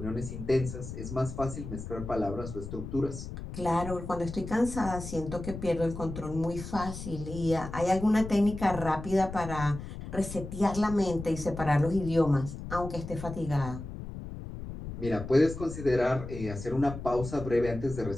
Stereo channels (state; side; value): noise; left; rumble, 9 dB below the sound